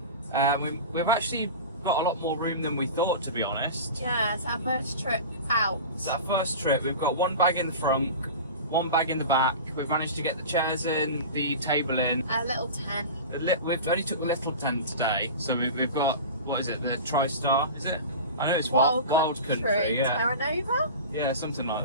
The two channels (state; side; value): inverted; both; correlation -0.31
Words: We've actually got a lot more room than we thought, to be honest. Yeah, it's our first trip out. It's our first trip. We've got one bag in the front, one bag in the back. We've managed to get the chairs in, the table in. A little tent. We've only took the little tent today, so we've got, what is it, the TriStar, is it? I know it's Wild Country, yeah. Terra Nova? Yeah, something like